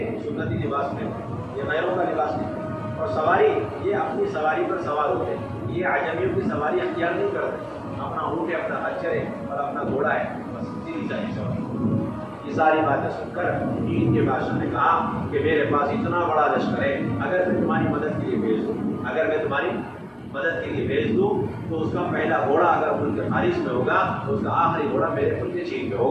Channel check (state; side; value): identical; both; correlation 1.00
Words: سنتی لباس نہیں، یہ غیروں کا لباس نہیں، اور سواری یہ اپنی سواری پر سوار ہوتے ہیں، یہ عجمیوں کی سواری اختیار نہیں کرتے، اپنا اونٹ ہے، اپنا خچر ہے اور اپنا گھوڑا ہے، بس سیدھی سادھی سواری۔ یہ ساری باتیں سن کر چین کے بادشاہ نے کہا کہ میرے پاس اتنا بڑا لشکر ہے، اگر میں تمہاری مدد کے لیے بھیج دوں، اگر میں تمہاری مدد کے لیے بھیج دوں تو اس کا پہلا گھوڑا اگر ملک خارج میں ہوگا تو اس کا آخری گھوڑا میرے ملک چین میں